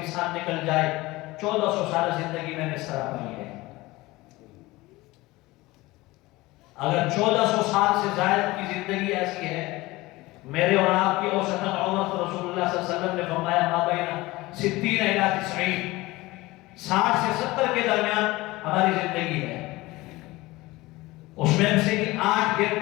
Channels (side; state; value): right; quieter; 20.2 dB